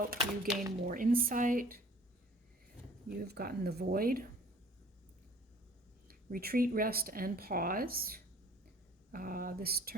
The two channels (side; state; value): both; normal; correlation 0.52